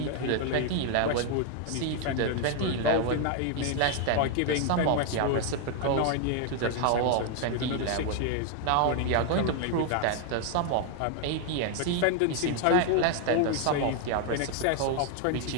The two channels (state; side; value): different; both; correlation 0.00